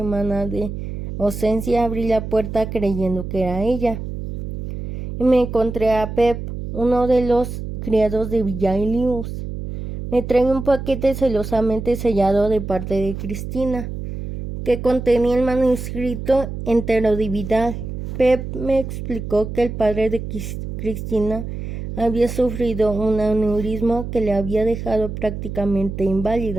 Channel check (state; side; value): noise; right; hum, 7 dB below the sound